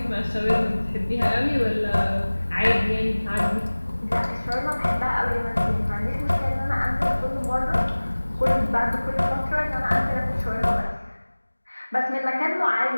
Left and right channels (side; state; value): both; inverted; correlation -1.00